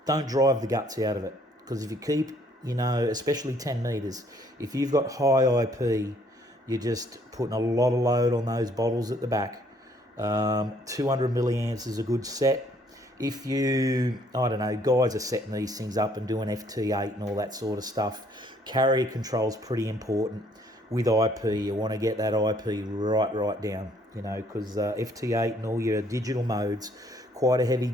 don't drive the guts out of it. Because if you keep, you know, especially 10 metres, if you've got high IP, you're just putting a lot of load on those bottles at the back. 200 milliamps is a good set. If you, I don't know, guys are setting these things up and doing FT8 and all that sort of stuff, carrier control is pretty important. with IP. You want to get that IP right down, you know, because FT8 and all your digital modes, quite a heavy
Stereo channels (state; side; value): normal; both; correlation 0.64